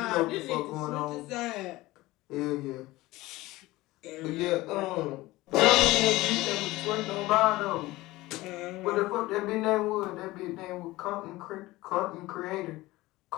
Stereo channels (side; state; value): right; quieter; 19.0 dB